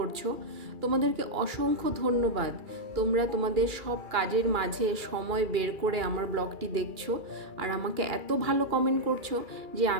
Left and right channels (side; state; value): left; late; 2.3 ms